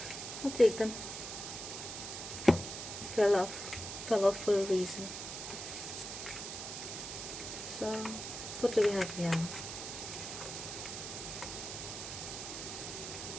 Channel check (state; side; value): noise; right; hiss, 7 dB below the sound